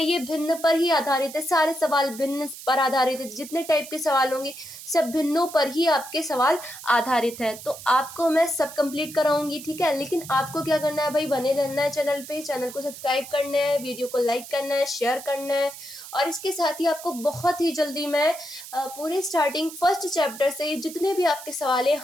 ये भिन्न पर ही आधारित है। सारे सवाल भिन्न पर आधारित है, जितने टाइप के सवाल होंगे सब भिन्नों पर ही आपके सवाल आधारित है। तो आपको मैं सब कंप्लीट कराऊंगी, ठीक है। लेकिन आपको क्या करना है भाई, बने रहना है चैनल पे, चैनल को सब्सक्राइब करना है, वीडियो को लाइक करना है, शेयर करना है। और इसके साथ ही आपको बहुत ही जल्दी मैं पूरे स्टार्टिंग फर्स्ट चैप्टर से जितने भी आपके सवाल हैं,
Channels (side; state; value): right; noise; hiss, 14 dB below the sound